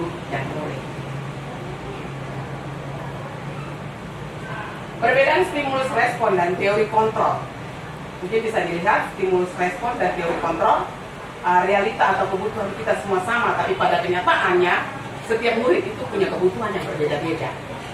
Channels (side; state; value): both; identical; correlation 1.00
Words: dan murid. Perbedaan stimulus respon dan teori kontrol. Mungkin bisa dilihat stimulus respon dan teori kontrol. Realita atau kebutuhan kita semua sama, tapi pada kenyataannya setiap murid itu punya kebutuhan yang berbeda-beda.